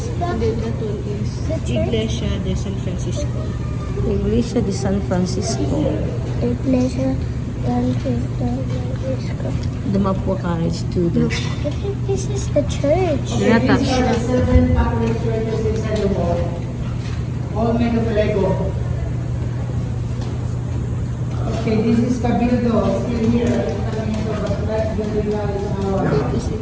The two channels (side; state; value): both; identical; correlation 1.00